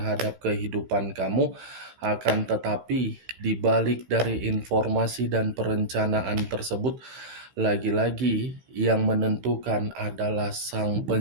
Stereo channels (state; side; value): late; left; 16 ms